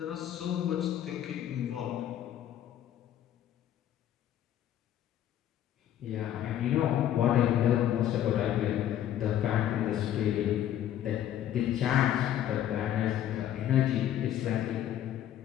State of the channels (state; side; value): quieter; right; 11.3 dB